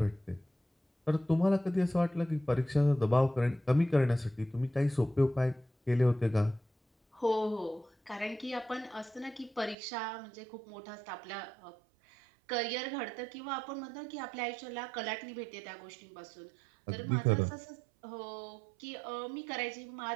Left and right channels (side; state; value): left; drops out; at 9.8 s